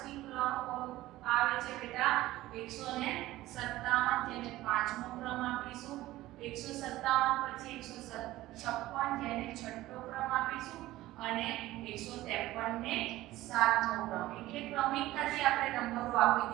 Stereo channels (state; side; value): quieter; left; 16.5 dB